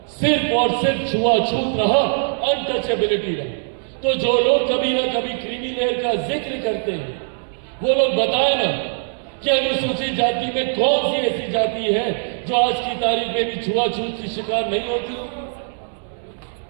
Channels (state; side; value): silent; left; 65 dB below the other